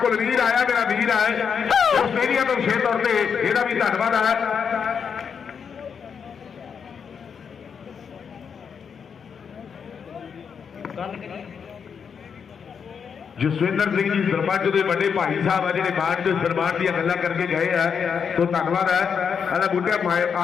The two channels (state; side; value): quieter; right; 6.7 dB